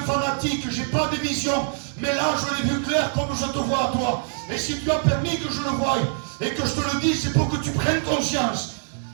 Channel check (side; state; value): left; silent; 62 dB below the other